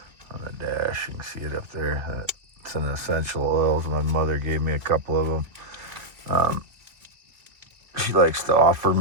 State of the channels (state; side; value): late; left; 2.5 ms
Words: on the dash. You can see it up there. It's an essential oils. My mother gave me a couple of them. She likes to offer